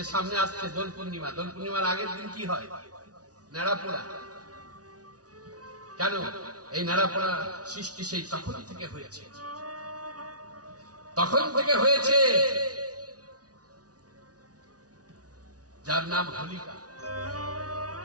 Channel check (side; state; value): left; late; 0.68 ms